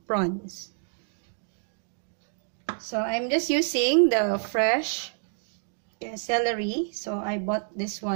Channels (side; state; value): left; silent; digital silence